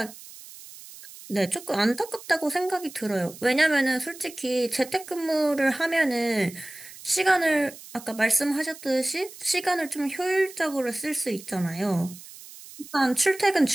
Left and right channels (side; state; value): right; noise; hiss, 17 dB below the sound